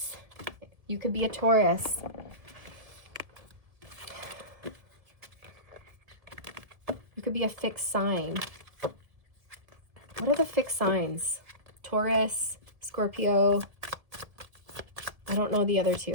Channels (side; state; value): left; late; 1.7 ms